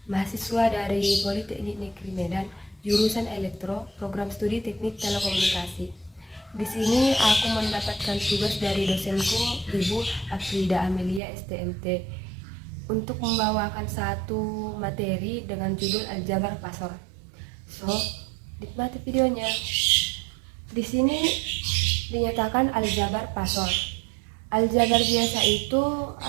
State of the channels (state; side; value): drops out; left; at 11.2 s